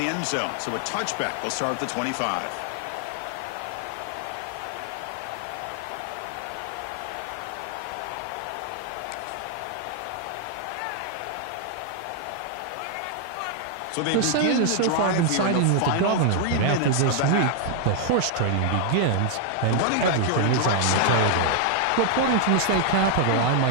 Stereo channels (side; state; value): both; different; correlation 0.00